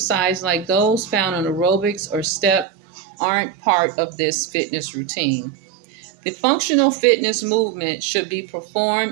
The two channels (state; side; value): drops out; left; at 2.7 s